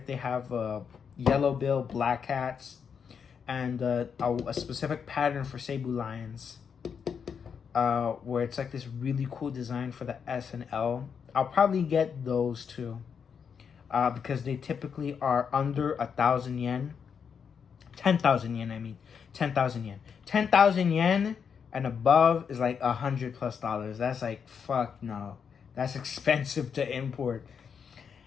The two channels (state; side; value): quieter; right; 6.7 dB